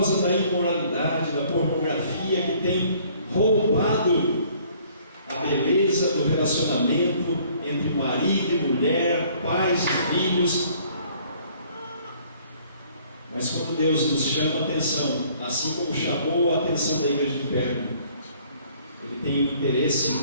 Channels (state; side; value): inverted; both; correlation -0.59